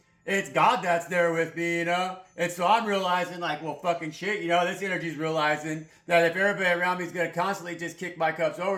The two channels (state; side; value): identical; both; correlation 1.00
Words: it's God that's there with me, you know. And so I'm realizing, like, well, fucking shit, you know. This energy's realizing that if everybody around me is gonna constantly just kick my cups